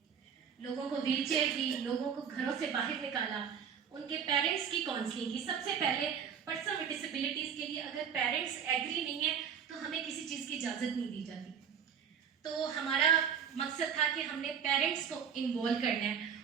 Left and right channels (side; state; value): left; quieter; 7.5 dB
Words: لوگوں کو ویل چیئر دی, لوگوں کو گھروں سے باہر نکالا, ان کے پیرنٹس کی کاؤنسلنگ کی. سب سے پہلے پرسن ود ڈسیبلٹیز کے لیے اگر پیرنٹس ایگری نہیں ہیں تو ہمیں کسی چیز کی اجازت نہیں دی جاتی. تو ہمارا مقصد تھا کہ ہم نے پیرنٹس کو انوالو کرنا ہے